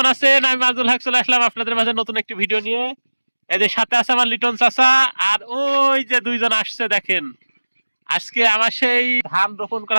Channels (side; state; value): both; inverted; correlation -1.00